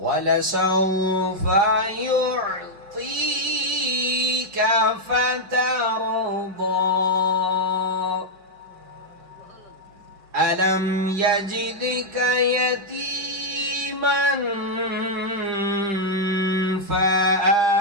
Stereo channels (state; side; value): late; left; 5.0 ms